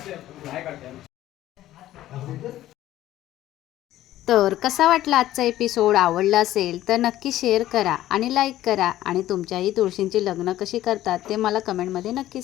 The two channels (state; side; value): quieter; right; 14.0 dB